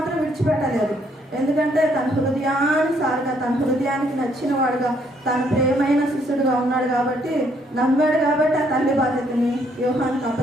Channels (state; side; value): normal; both; correlation 0.69